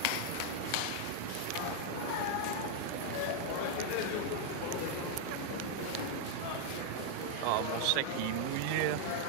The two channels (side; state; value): both; different; correlation 0.00